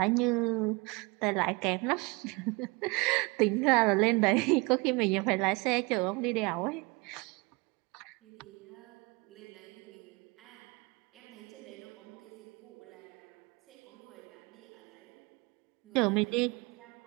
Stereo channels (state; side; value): quieter; left; 27.0 dB